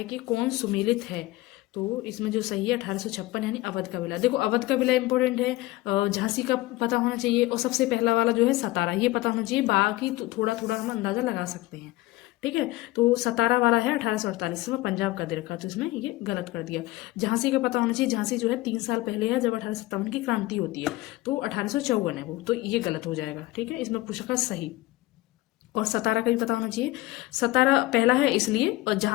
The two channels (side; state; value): right; quieter; 19.0 dB